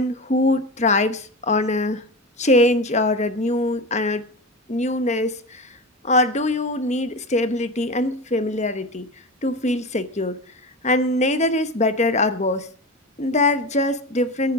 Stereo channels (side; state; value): both; normal; correlation 0.25